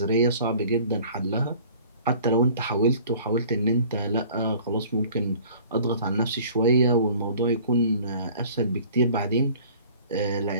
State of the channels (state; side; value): inverted; both; correlation -0.49